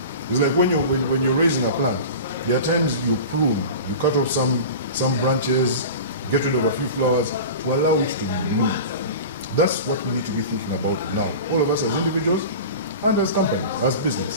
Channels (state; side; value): inverted; both; correlation -0.33